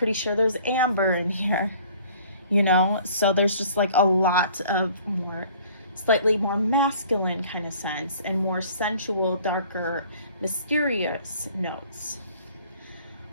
sure there's amber in here, you know? So there's just like a lot of more slightly more masculine kind of scents and more sensual, darker, mysterious notes.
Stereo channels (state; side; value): inverted; both; correlation -0.53